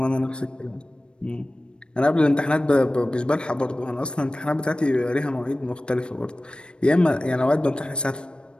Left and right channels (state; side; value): late; right; 0.054 ms